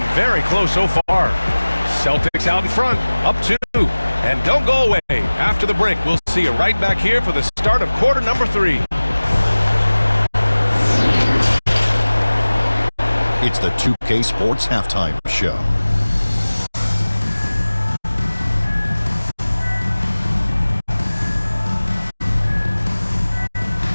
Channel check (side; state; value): both; inverted; correlation -1.00